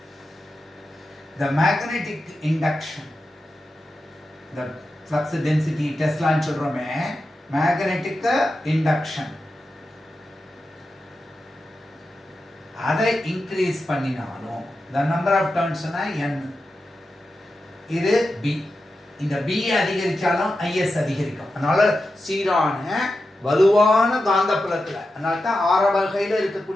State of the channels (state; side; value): normal; both; correlation 0.90